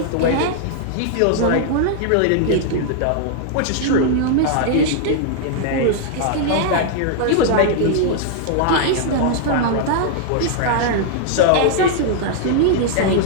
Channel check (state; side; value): different; both; correlation -0.01